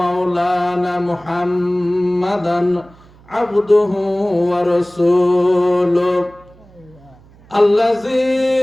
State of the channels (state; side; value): noise; right; hum, 26 dB below the sound